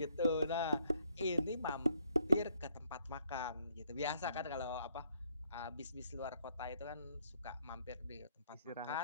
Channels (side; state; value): both; inverted; correlation -0.69